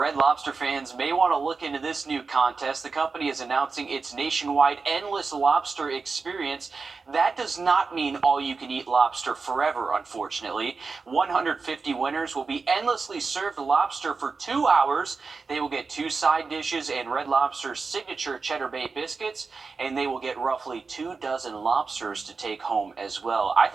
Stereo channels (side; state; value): left; quieter; 4.5 dB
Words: Lobster fans may want to look into this new contest. The company is announcing its nationwide Endless Lobster experience. That does not mean all-you-can-eat lobster forever, unfortunately. 150 winners will be endlessly served lobster for 2 hours. They will get 2 side dishes and Red Lobster's signature Cheddar Bay biscuits, and they will get roughly 2 dozen lobsters to take home as well. I